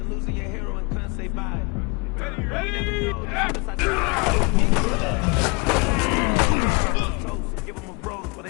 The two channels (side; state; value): right; quieter; 30.9 dB